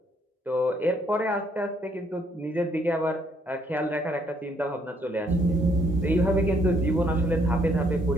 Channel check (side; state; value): both; normal; correlation 0.68